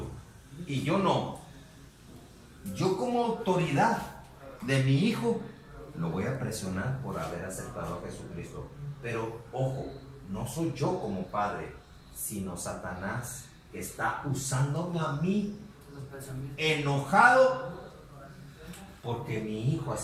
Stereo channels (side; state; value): both; identical; correlation 1.00